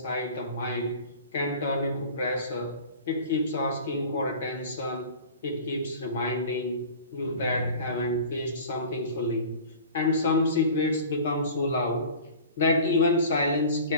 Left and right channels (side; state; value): both; inverted; correlation -0.40